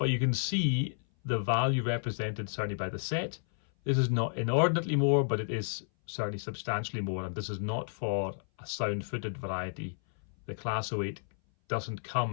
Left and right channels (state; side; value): silent; right; 57 dB below the other